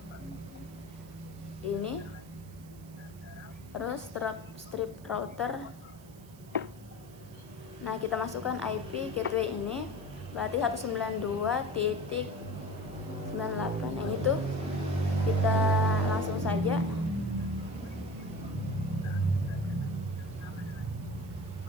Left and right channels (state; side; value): noise; right; hiss, 24 dB below the sound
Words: ini, terus strip router. Nah, kita masukkan IP gateway ini, berarti 192.98, yang itu kita langsung saja.